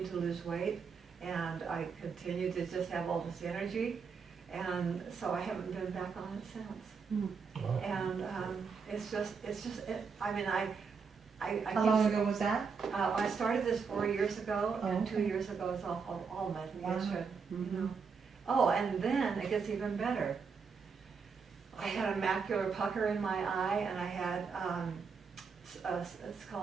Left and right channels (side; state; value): left; quieter; 5.6 dB